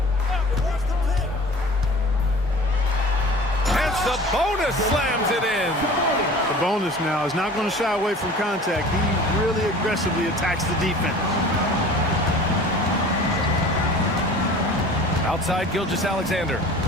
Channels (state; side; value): normal; both; correlation 0.43